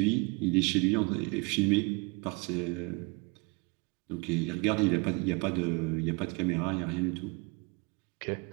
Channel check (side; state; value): left; quieter; 29.5 dB